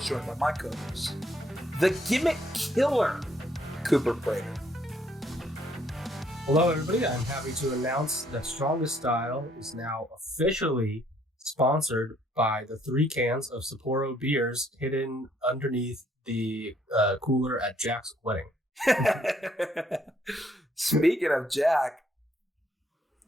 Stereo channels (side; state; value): both; normal; correlation 0.67